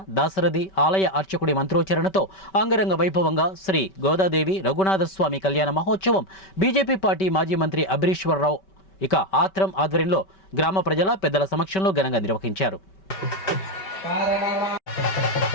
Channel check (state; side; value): late; right; 5.2 ms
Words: దాశరథి ఆలయ అర్చకుడి మంత్రోచ్చరణతో అంగరంగ వైభవంగా శ్రీ గోదాదేవి రఘునాథస్వామి కళ్యాణ మహోత్సవం బీజేపీ పార్టీ మాజీ మంత్రి అభిరీశ్వరరావు ఇక ఆత్రం ఆధ్వర్యంలో గ్రామ ప్రజల పెద్దల సమక్షంలో ఘనంగా నిర్వహించారు.